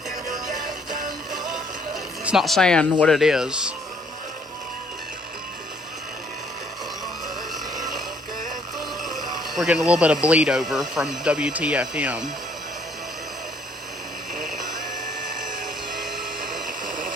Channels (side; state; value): both; normal; correlation 0.64